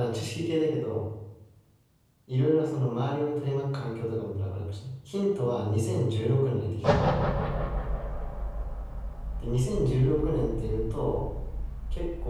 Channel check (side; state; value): both; identical; correlation 1.00